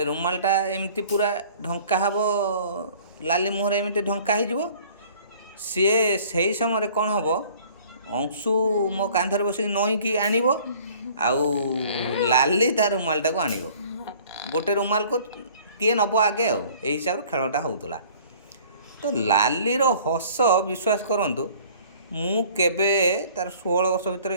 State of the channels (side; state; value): both; inverted; correlation -0.52